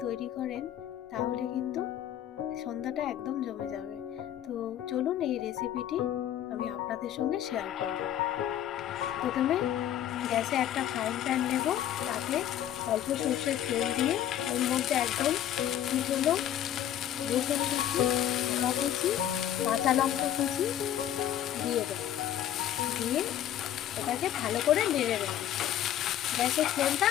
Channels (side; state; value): right; quieter; 11.3 dB